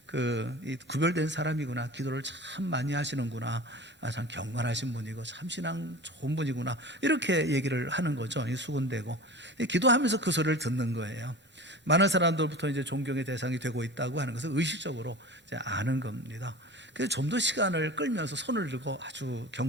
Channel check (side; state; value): both; normal; correlation 0.35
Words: 이 구별된 사람이구나, 기도를 참 많이 하시는구나, 참 경건하신 분이고 참 신앙 좋은 분이구나, 이렇게 얘기를 하는 거죠. 이 수군대고 기도하면서 그 소리를 듣는 거예요. 많은 사람들부터 이제 존경의 대상이 되고 있다고 하는 것을 의식적으로 이제 아는 겁니다. 그래서 좀 더 시간을 끌면서 손을 들고 아주